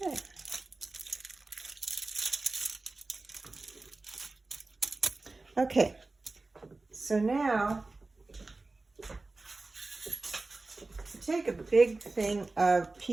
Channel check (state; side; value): quieter; left; 3.4 dB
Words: Okay. Okay, so now take a big thing, a